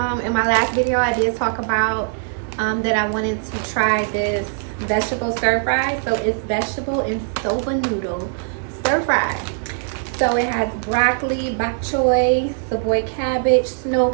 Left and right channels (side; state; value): left; silent; digital silence